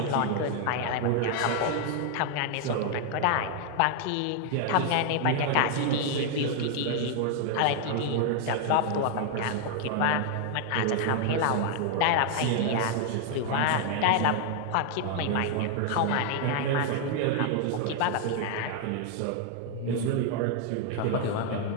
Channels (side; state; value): both; different; correlation 0.00